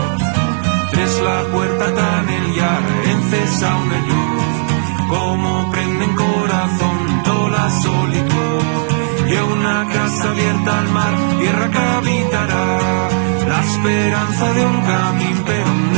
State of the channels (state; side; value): silent; left; 70 dB below the other